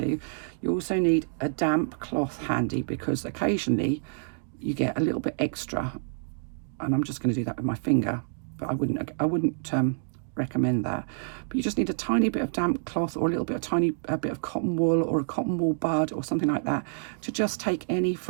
You also need a damp cloth handy, because occasionally you get a little bit extra, and I'm just going to do that with my finger, but I wouldn't recommend that. But you just need a tiny bit of damp cloth, or a little bit of tiny bit of cotton wool, or a cotton wool bud, or something like that, to just take any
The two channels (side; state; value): left; silent; digital silence